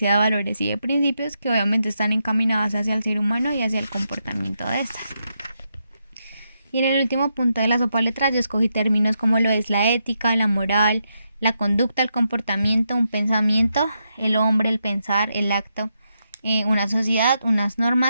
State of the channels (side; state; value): both; inverted; correlation -0.82